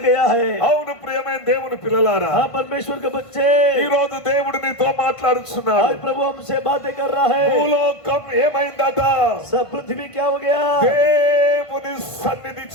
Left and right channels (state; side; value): late; right; 1.5 ms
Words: गया है. అవును ప్రియమైన దేవుని పిల్లలారా, हाँ परमेश्वर के बच्चे, ఈ రోజు దేవుడు నీతో మాట్లాడుచున్నాడు. आज प्रभु हमसे बातें कर रहा है. భూలోకం ఏమైందట? सब पृथ्वी क्या हो गया? దేవుని సన్నిధి